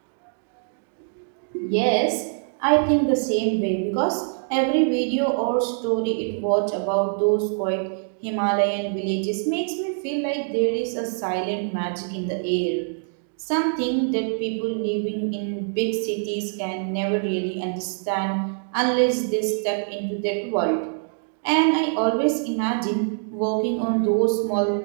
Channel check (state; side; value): silent; left; digital silence